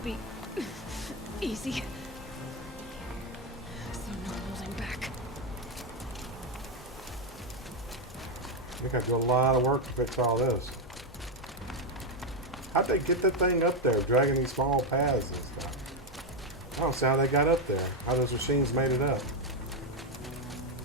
be easy. So no holding back. I think I do a lot of work to fix all this. How'd they get that thing up there, dragging these small paths and stuff? I don't see how they got up there. How those machines made it up.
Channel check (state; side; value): normal; both; correlation 0.06